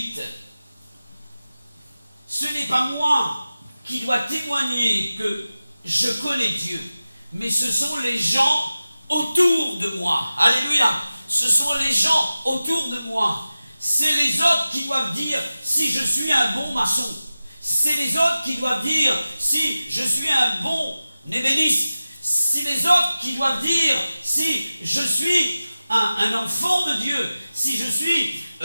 Ce n'est pas moi qui dois témoigner que je connais Dieu, mais ce sont les gens autour de moi. Alléluia! Ce sont les gens autour de moi. C'est les autres qui doivent dire si je suis un bon maçon. C'est les autres qui doivent dire si je suis un bon ébéniste. C'est les autres qui doivent dire si je suis un enfant de Dieu, si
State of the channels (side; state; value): both; inverted; correlation -0.95